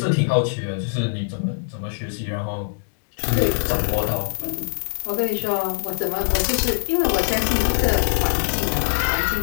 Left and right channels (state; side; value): silent; right; digital silence